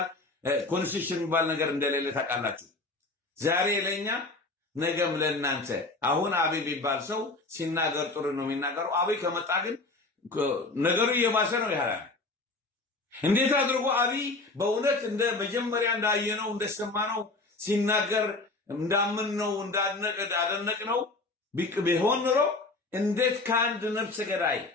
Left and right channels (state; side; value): quieter; right; 3.3 dB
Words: ኮንስቲቱሽን የሚባል ነገር እንደሌለ ታውቃላችሁ። ዛሬ ለኛ ነገም ለእናንተ። አሁን አብይ የሚባል ሰው ሲናገር ጥሩ ነው የሚናገረው። አብይ ከመጣ ግን ነገሩ እየባሰ ነው ያለው። እንዴት አድርጎ አብይ በእውነት እንደ መጀመሪያ እንዳየነው እንደሰማነው ሲናገር እንዳምንነው እንዳደነቅነው ቢሆን ኖሮ እንዴት ከአንድ ነፍሰ ገዳይ፣